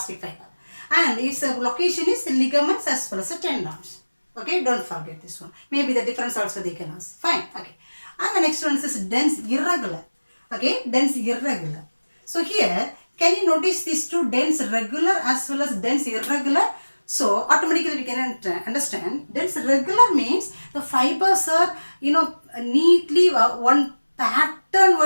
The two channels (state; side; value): inverted; both; correlation -1.00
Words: fiber. And its location is the ligaments as well as the tendons. Okay, don't forget this one. Maybe the difference also they can ask. Fine. Okay. And the next one is dense irregular. Okay, dense irregular. So here, can you notice these two, dense regular as well as dense irregular? So automatically we can understand dense regular means the fibers are neatly one pattern